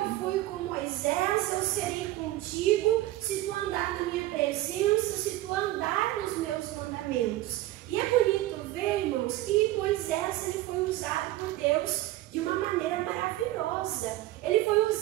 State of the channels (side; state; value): left; quieter; 16.2 dB